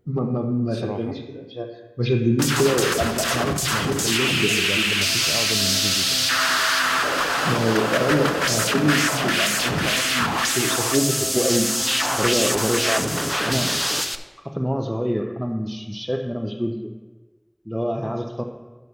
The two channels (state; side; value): identical; both; correlation 1.00